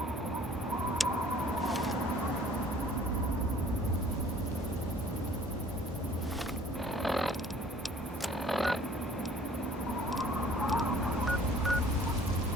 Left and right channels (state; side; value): normal; both; correlation 0.53